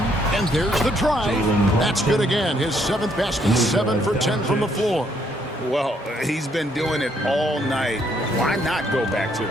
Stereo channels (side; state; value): both; normal; correlation 0.70